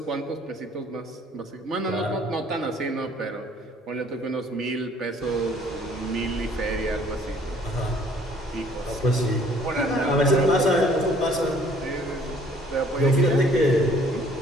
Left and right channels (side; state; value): both; normal; correlation 0.58